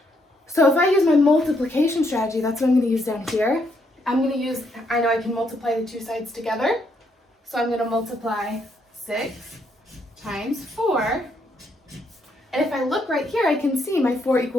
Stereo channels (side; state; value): both; normal; correlation 0.74